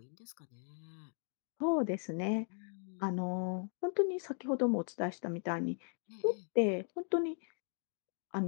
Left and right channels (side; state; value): right; silent; 53 dB below the other